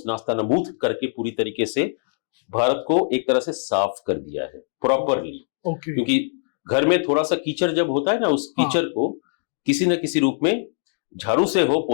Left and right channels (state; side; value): silent; right; digital silence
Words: नास्तानाबूद करके पूरी तरीके से भारत को एक तरह से साफ कर दिया है प्रॉपरली। क्योंकि घर में थोड़ा सा कीचड़ जब होता है ना, उस कीचड़ को किसी न किसी रूप में, झाड़ू से हो,